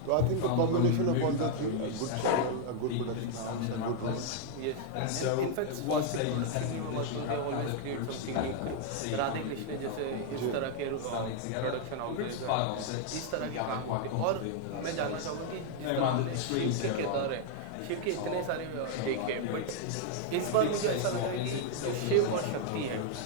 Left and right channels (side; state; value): both; different; correlation 0.00